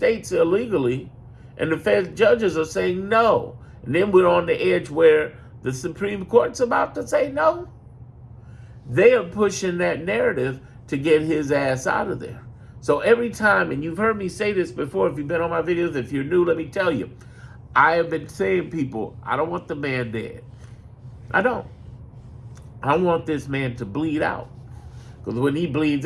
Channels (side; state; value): both; identical; correlation 1.00